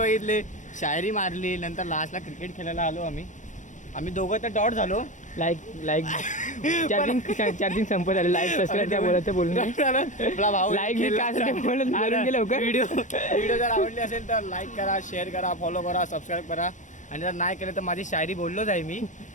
शायरी मारली. नंतर लास्टला क्रिकेट खेळायला आलो आम्ही दोघं तर डॉट झालो. लाईक चार्जिंग संपत आले. लाईक सबस्क्राईब त्या बोलायचं बोलून आपला भाऊ लाईक मी काय असेल ते बोलून गेलं लवकर. व्हिडिओ जर आवडली असेल तर लाईक करा, शेअर करा, फॉलो करा, सबस्क्राईब करा. आणि जर नाही केलं तर माझी शायरी बोललोच आहे मी.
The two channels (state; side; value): late; right; 0.36 ms